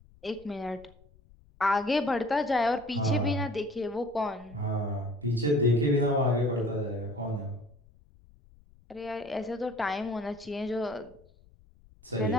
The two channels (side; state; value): left; noise; rumble, 27 dB below the sound